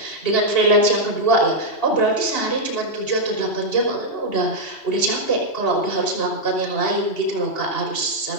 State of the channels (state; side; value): late; right; 2.8 ms